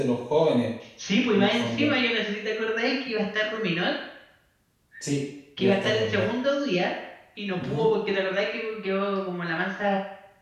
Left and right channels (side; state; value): both; identical; correlation 1.00